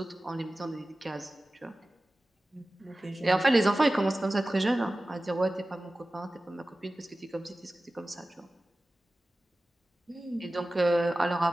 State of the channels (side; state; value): both; normal; correlation 0.96